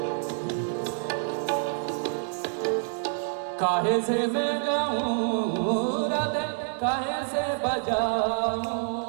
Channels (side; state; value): left; silent; 60 dB below the other